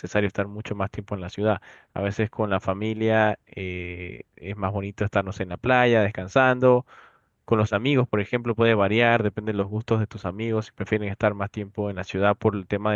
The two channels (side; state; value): both; identical; correlation 1.00